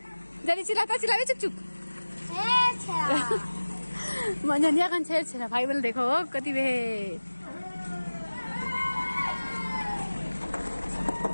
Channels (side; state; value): both; inverted; correlation -1.00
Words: जल्दी चिल्लाता चिल्लावे चुक चुक मननिया कन छेरा भाई बोल देखो कति बे